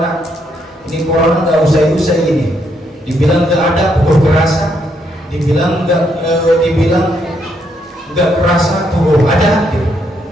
Ini corona nggak usai-usai ini. Dibilang nggak ada, pukul kerasa. Dibilang nggak kerasa, pukul ada. Gitu.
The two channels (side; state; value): both; normal; correlation 0.75